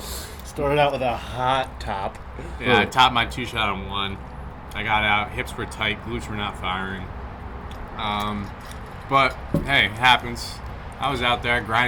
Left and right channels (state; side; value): identical; both; correlation 1.00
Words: out with a hot top. Yeah, I topped my 2-shot on 1. I got out. Hips were tight. Glutes were not firing. But hey, it happens. I was out there,